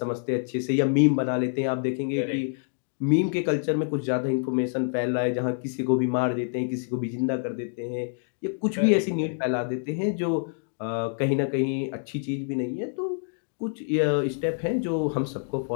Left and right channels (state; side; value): silent; right; digital silence